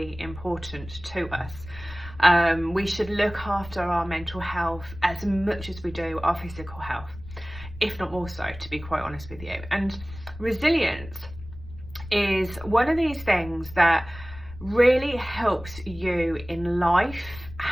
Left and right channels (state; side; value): noise; left; rumble, 15 dB below the sound